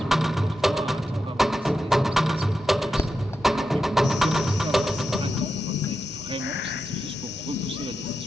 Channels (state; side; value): normal; both; correlation 0.89